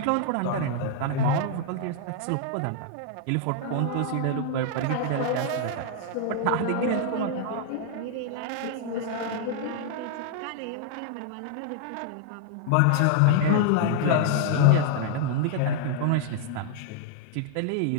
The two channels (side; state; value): both; different; correlation 0.00